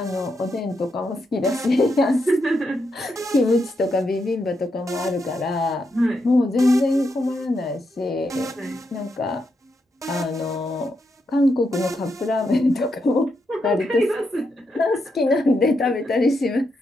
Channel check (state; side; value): normal; both; correlation 0.82